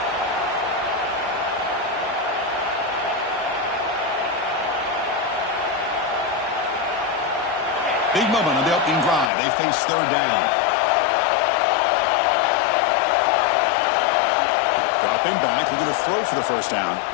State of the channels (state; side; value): drops out; right; at 9.3 s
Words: Big moment on the opening drive. They face third down. Dropping back, looking to throw for the first down.